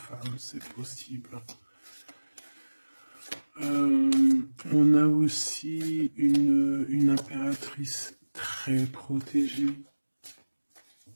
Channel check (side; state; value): both; inverted; correlation -1.00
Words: c'est possible. On a aussi une impératrice très protégée